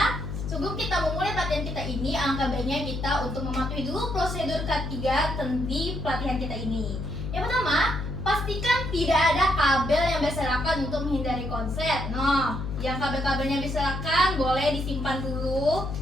kita memulai pelatihan kita ini, alangkah baiknya kita untuk mematuhi dulu prosedur K3 di pelatihan kita ini. Yang pertama, pastikan tidak ada kabel yang berserakan untuk menghindari konslet. Nah, yang kabel-kabelnya berserakan boleh disimpan dulu.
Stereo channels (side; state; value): left; noise; hum, 5 dB below the sound